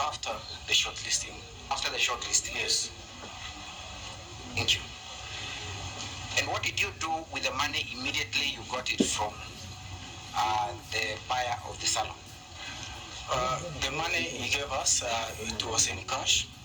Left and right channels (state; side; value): identical; both; correlation 1.00